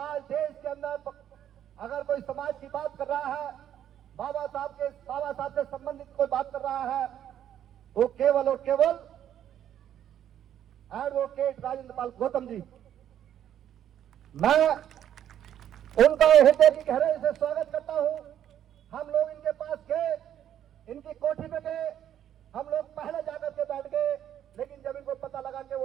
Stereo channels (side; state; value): left; quieter; 10.4 dB